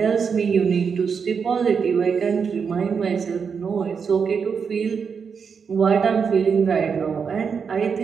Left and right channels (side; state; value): left; quieter; 6.1 dB